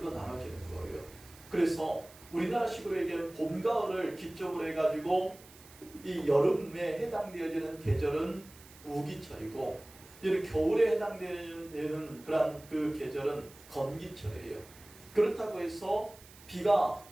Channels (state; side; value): noise; right; hiss, 22 dB below the sound